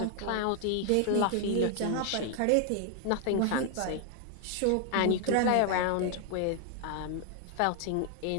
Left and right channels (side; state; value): both; different; correlation 0.00